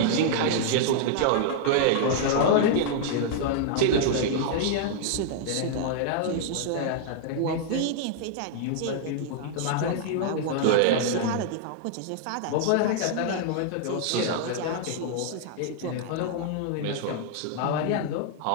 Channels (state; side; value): different; both; correlation -0.01